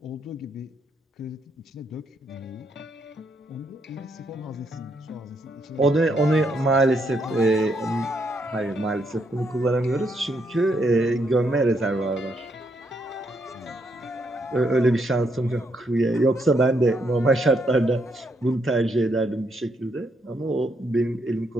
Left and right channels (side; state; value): both; normal; correlation 0.76